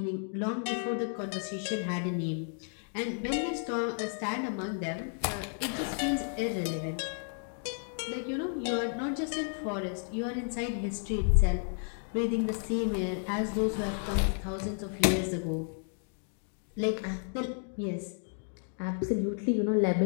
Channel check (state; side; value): silent; right; 56 dB below the other